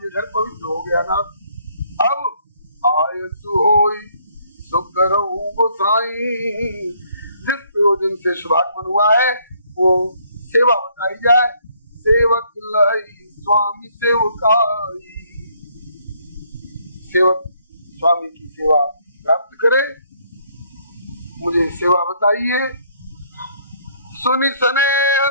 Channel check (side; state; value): both; inverted; correlation -0.66